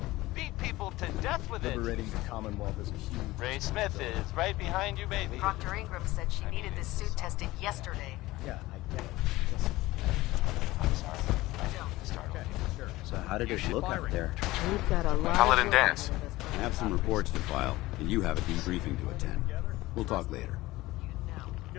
beat people to death with it. Liberating the Commonwealth is a huge... Ray Smith is right behind you, baby. Proctor Ingram said she needed this suit tested yesterday. Yeah, I get it. I'm sorry. I don't start. Okay, sure. So how did it look out there? We've got a lot Paladin of Dance. I have some reports to file, and you have a debriefing to attend. We'll talk later.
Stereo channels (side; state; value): right; quieter; 18.6 dB